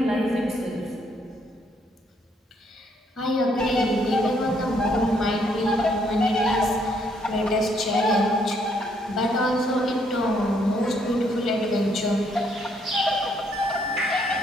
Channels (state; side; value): normal; both; correlation 0.70